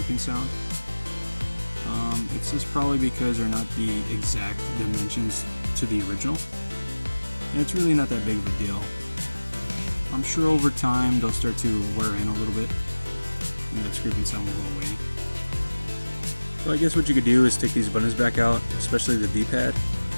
sound. It's just probably because they're not the exact dimensions to the original. And it's really not that big of a deal. I'm sure over time they'll start to wear in a little bit and that scraping sound will go away. So I guess what you could do is take these buttons back out, especially the D-pad,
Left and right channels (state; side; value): inverted; both; correlation -1.00